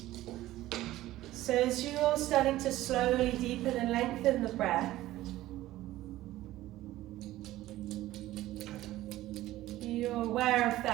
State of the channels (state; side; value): quieter; left; 15.7 dB